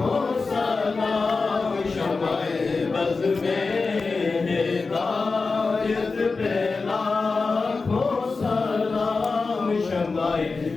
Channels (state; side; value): quieter; right; 4.2 dB